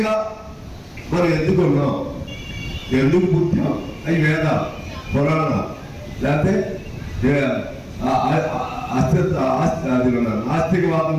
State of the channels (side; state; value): both; identical; correlation 1.00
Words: మనం ఎందుకున్నాం, ఎందుకు పుట్టాం, అవి వేదాలు, పురాణాలు, లేకపోతే నాస్తికవాదం